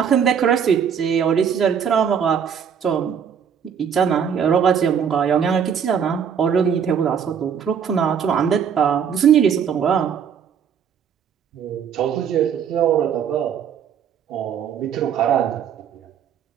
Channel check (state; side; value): quieter; left; 7.8 dB